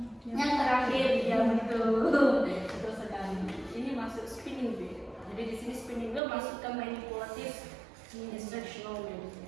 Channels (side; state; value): left; drops out; at 6.2 s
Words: yang terakhir, ya betul sekali. Ini masuk spinning wheel. Jadi di sini spinning wheel masuk ke manipulative instructional